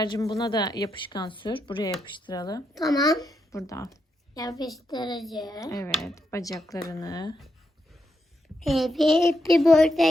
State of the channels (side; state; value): both; normal; correlation 0.82